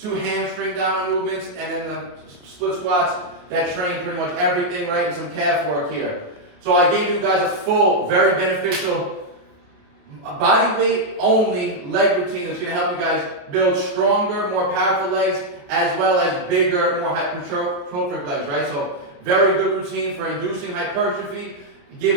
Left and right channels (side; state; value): left; late; 28 ms